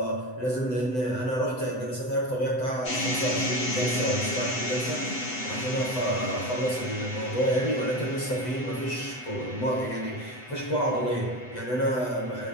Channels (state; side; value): late; right; 7.9 ms